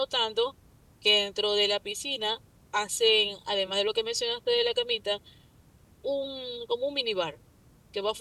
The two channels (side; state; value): both; identical; correlation 1.00